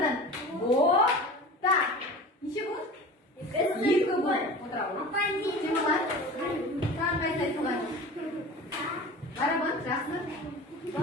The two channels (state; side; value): normal; both; correlation 0.36